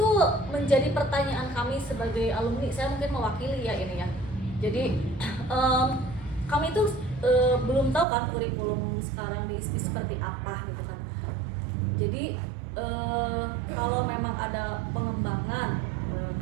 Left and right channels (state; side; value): drops out; left; at 8.1 s